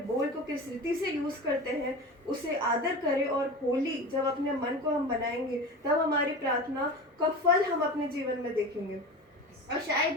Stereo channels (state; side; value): normal; both; correlation 0.31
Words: बोल को किस रीति से यूज करते हैं, उसे आदर करें। और होली जब अपने मन को हम बनाएंगे तब हमारी प्रार्थना का फल हम अपने जीवन में देखेंगे। और